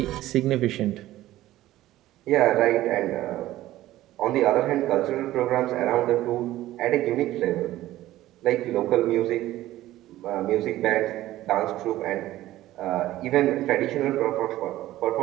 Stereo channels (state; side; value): quieter; left; 15.2 dB